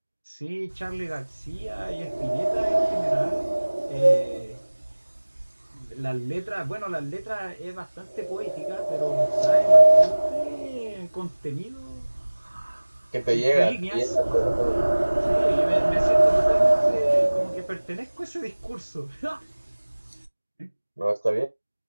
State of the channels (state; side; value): inverted; both; correlation -1.00